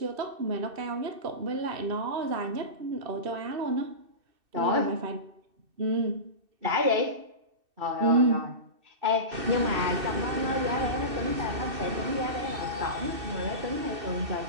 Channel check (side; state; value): left; late; 2.6 ms